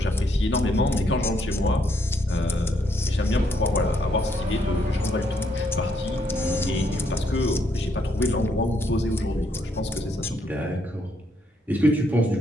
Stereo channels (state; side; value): normal; both; correlation 0.73